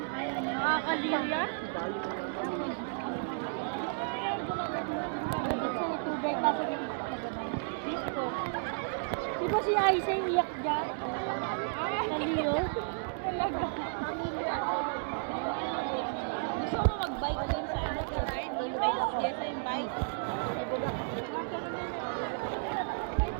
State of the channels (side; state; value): left; silent; 56 dB below the other